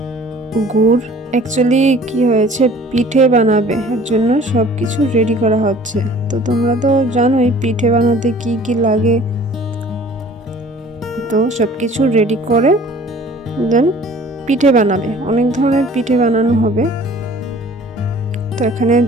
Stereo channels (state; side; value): normal; both; correlation 0.49